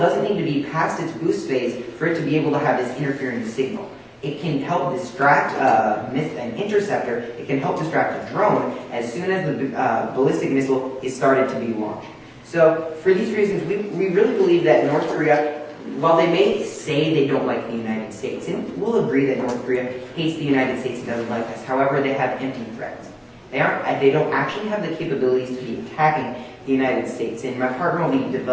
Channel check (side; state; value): both; identical; correlation 1.00